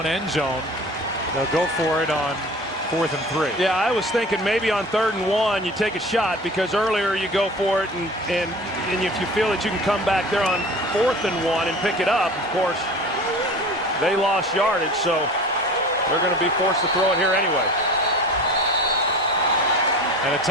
end zone, they'll go for it on 4th and 3. Yeah, I was thinking maybe on 3rd and 1 you take a shot, because earlier you go for it, and if you feel that you can come back there on 4th and 1 and pick it up, of course, they lost yardage, so they're going to be forced to throw it here anyway. And a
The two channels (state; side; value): normal; both; correlation 0.39